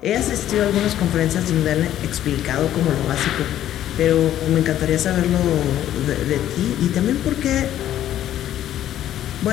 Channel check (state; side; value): quieter; right; 12.0 dB